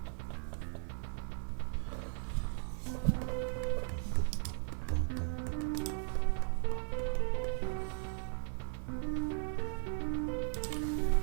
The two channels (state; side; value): silent; left; 53 dB below the other